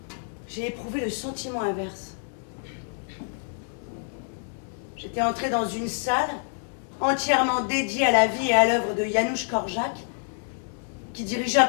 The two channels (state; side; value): silent; right; digital silence